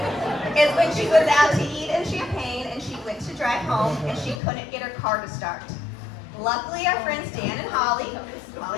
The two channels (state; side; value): drops out; right; at 4.4 s